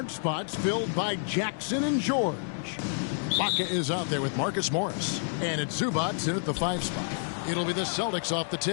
spots filled by Jackson and George. Baca is out there with Marcus Morris, and it's Zubac in at the 5 spot. It'll be the Celtics off the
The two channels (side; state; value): right; silent; digital silence